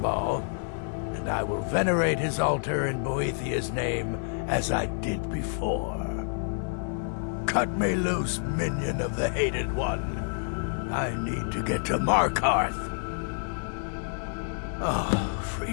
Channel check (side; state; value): right; silent; 55 dB below the other